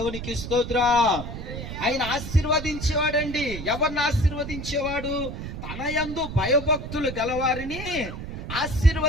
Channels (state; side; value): noise; right; rumble, 8 dB below the sound